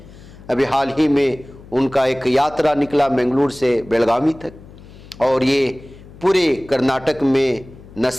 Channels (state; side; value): noise; left; hum, 20 dB below the sound